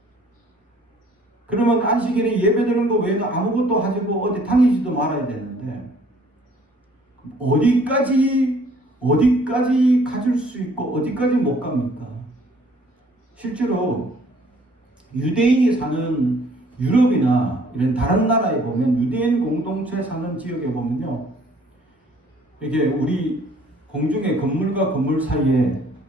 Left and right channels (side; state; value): both; normal; correlation 0.59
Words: 그러면 안식일에 예배 드리는 거 외에는 아무것도 하지고 어디 다니지도 말아야 되는데 어디까지 가질 수 있고 어디까지 못 갑니까? 실제로 유대인이 사는 유럽이나 이런 다른 나라에 보면 유대인 공동체 사는 지역에 보면요, 이게 우리 공중에 건물과 건물 사이에